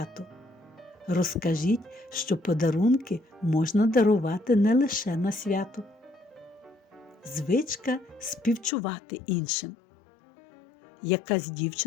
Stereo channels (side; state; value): right; drops out; at 8.7 s